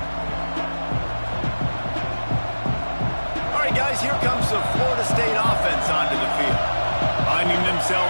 All right, guys, here comes the Florida State offense onto the field. Finding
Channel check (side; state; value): both; inverted; correlation -1.00